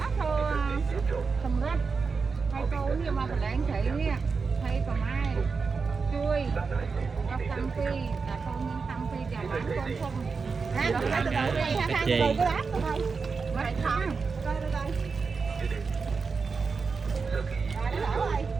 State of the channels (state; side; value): quieter; left; 4.9 dB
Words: thô sầm rách. Thấy cô nè mà phải đánh cây nè. Thấy còn ai chui nó tăng phi là con nhân tăng phi và bán con không ha từ đầu đây ha ha từ cái bát thôi vậy thôi coi đây đây rồi nó đổ rồi